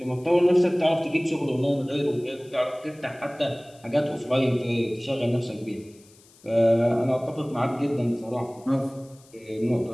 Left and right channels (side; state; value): left; noise; hiss, 27 dB below the sound